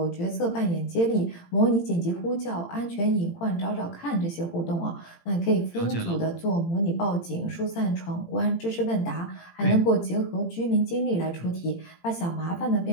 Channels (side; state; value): right; late; 18 ms